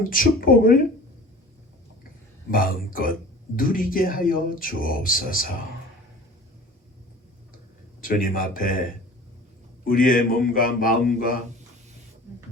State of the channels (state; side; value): normal; both; correlation 0.42